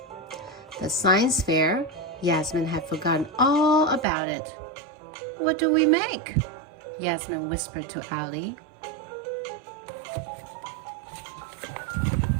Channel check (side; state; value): left; drops out; at 4.0 s